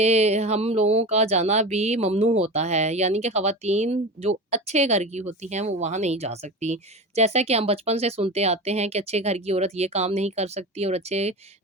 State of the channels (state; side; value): normal; both; correlation 0.28